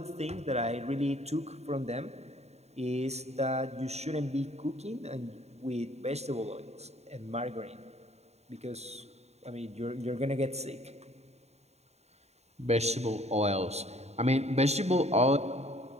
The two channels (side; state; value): left; late; 0.31 ms